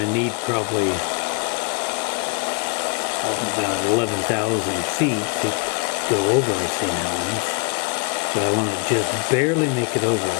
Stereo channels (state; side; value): quieter; right; 36.1 dB